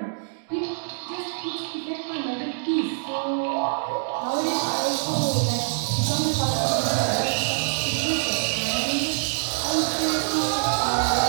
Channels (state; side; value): silent; left; digital silence